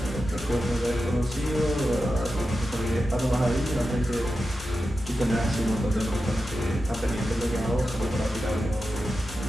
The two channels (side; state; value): both; normal; correlation 0.91